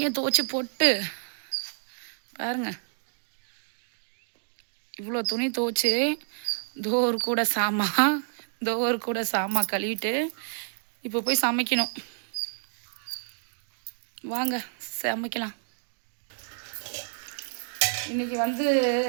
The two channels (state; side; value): silent; left; digital silence